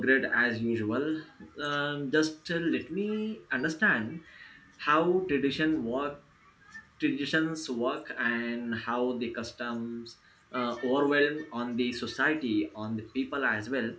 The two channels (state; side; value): identical; both; correlation 1.00